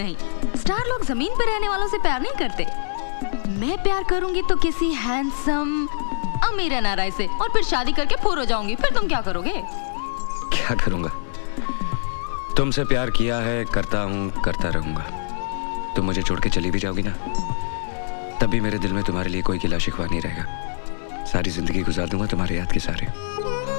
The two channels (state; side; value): silent; right; digital silence